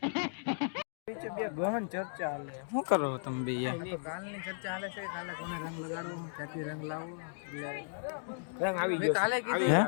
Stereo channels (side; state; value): right; silent; digital silence